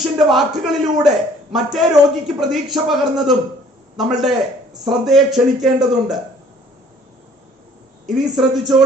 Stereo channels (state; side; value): normal; both; correlation 0.55